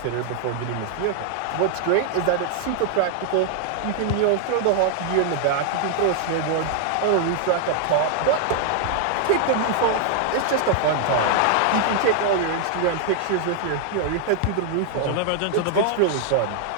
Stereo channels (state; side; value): different; both; correlation 0.00